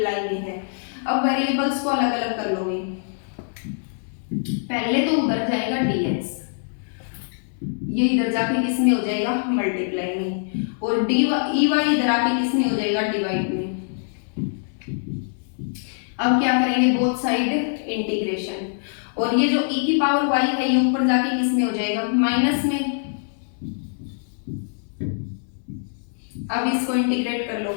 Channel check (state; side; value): silent; right; digital silence